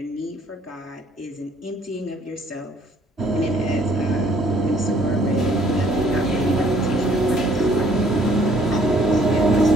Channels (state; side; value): normal; both; correlation 0.61